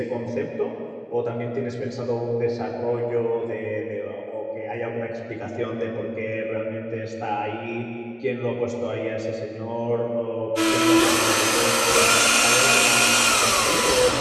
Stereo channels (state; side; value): identical; both; correlation 1.00